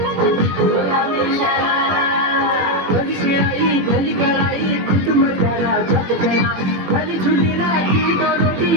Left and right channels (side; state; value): left; late; 21 ms